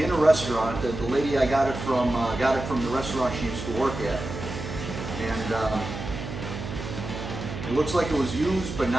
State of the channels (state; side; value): noise; right; hum, 8 dB below the sound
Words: in a restaurant. The lady I got it from the restaurant she used to work at. And it looks like it was used but